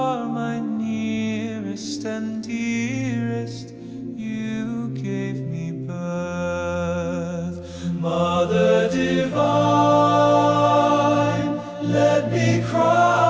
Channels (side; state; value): both; identical; correlation 1.00